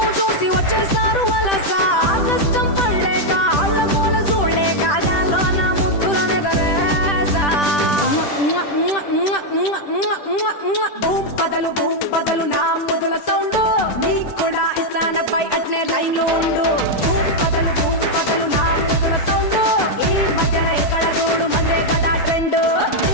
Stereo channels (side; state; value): right; late; 10 ms